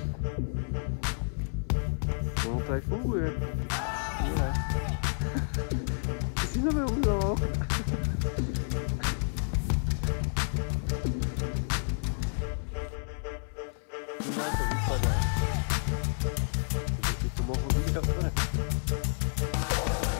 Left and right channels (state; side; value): silent; right; 58 dB below the other